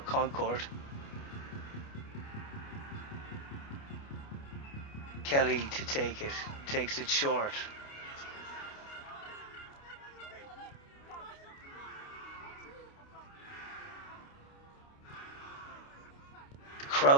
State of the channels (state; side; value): late; right; 29 ms